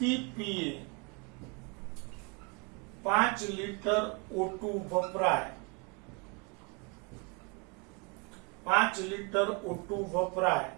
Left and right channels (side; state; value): left; quieter; 31.6 dB